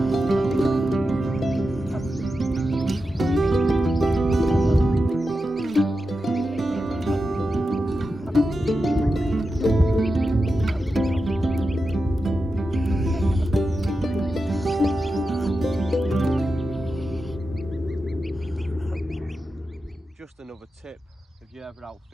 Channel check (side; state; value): both; normal; correlation 0.90